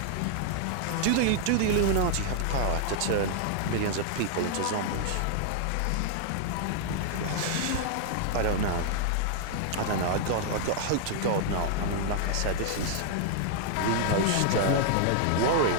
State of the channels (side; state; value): both; different; correlation -0.01